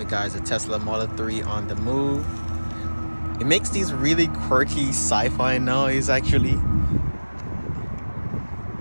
guys, a Tesla Model 3 on the move. It makes these really quirky sci-fi noise, actually.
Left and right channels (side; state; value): both; inverted; correlation -1.00